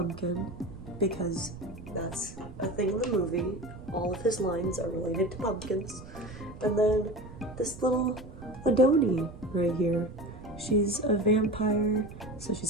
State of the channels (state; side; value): noise; right; rumble, 16 dB below the sound